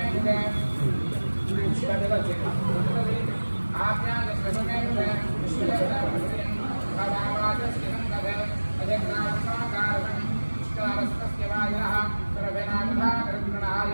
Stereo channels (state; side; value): inverted; both; correlation -1.00